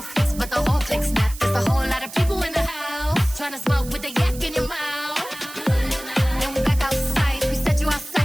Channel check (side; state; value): right; noise; hiss, 15 dB below the sound